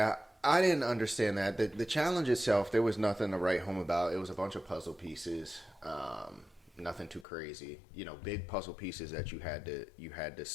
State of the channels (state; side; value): drops out; right; at 7.2 s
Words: I didn't understand that. The challenge itself, there was nothing to write home about. It was a bunch of puzzle pieces. Nothing too crazy. Big puzzle pieces that you had to